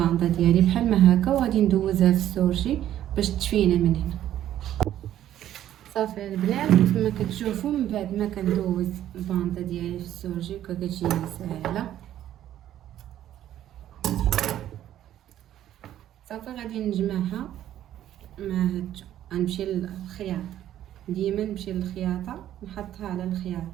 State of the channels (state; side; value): quieter; left; 11.9 dB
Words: ديالي بحال ما هكا وغادي ندوزها في السورجي باش تفينا من هنا. صافي البنات كما كتشوفوا من بعد ما كندوز البانطه ديالي في السورجي كتجيني ساهله. صافي غادي نجمعها مع هاد. غنمشي للخياطه، ديما نمشي للخياطه نحطها على